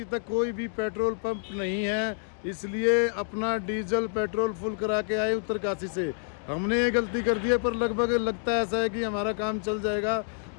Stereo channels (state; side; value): silent; right; digital silence